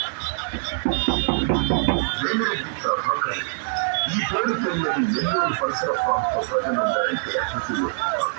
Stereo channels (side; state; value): left; silent; digital silence